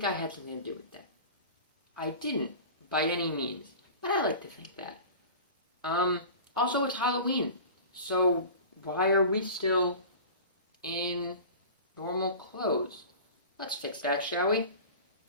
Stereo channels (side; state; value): both; inverted; correlation -0.37